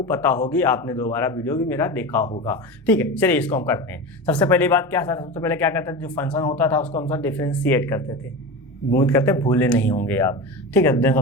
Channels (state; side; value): normal; both; correlation 0.26